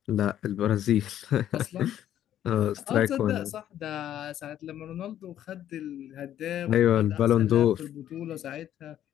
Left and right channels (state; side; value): quieter; right; 11.3 dB